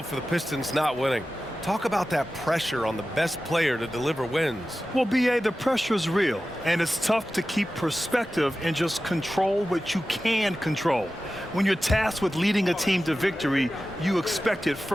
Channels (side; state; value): both; normal; correlation 0.94